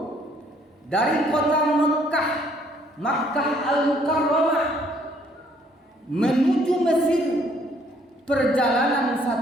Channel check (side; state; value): both; normal; correlation 0.64